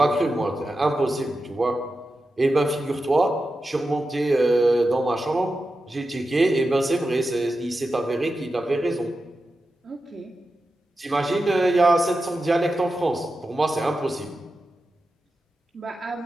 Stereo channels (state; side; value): normal; both; correlation 0.91